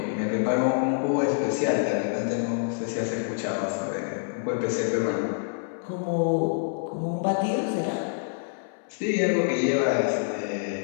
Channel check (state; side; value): silent; right; 60 dB below the other